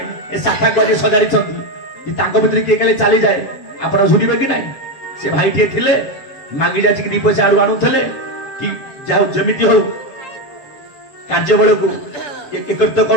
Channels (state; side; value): late; right; 7.1 ms